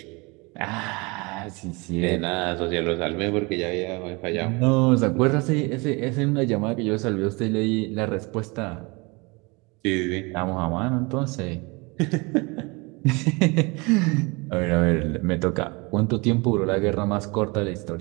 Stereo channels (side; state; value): left; quieter; 27.2 dB